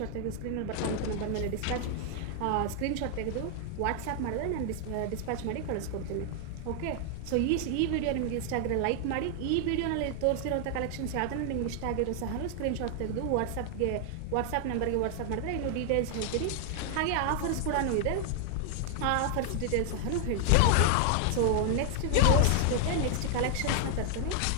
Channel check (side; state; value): both; different; correlation 0.00